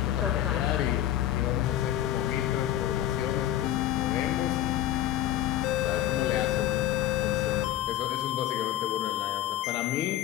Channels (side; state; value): right; quieter; 12.7 dB